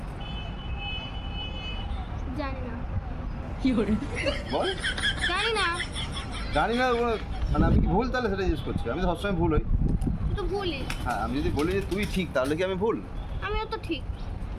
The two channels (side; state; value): both; identical; correlation 1.00